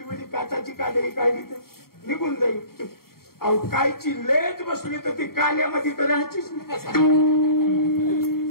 उली काचाची काजळी काढली तर निघून जाईल अहो कायची लेज बसली तर ती काल्यामध्ये तर राहायचीच नाही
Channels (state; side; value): late; right; 0.93 ms